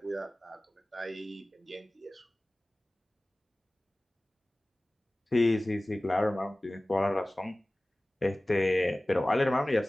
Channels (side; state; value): both; normal; correlation 0.98